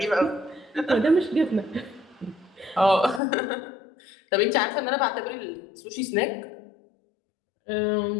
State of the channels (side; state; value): right; drops out; at 3.2 s